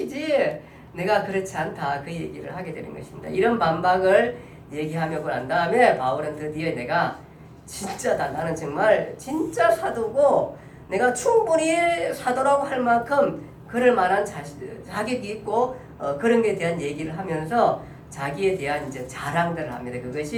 내가 그렇지 않다. 그 얘기를 하게 되는 것입니다. 이런 반박을 얘기하고 난 다음에 바울은 드디어 내가 진짜다. 나는 정말 진짜 사도고 내가 충분히 사도라고 할 만큼 그럴 만한 자격이 있고, 그런 게 대한 얘기를 하면서 자기에 대한 이제 자랑들을 합니다.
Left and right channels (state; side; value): identical; both; correlation 1.00